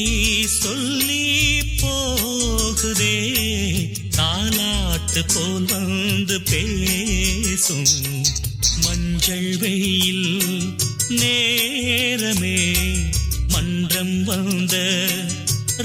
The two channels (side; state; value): both; identical; correlation 1.00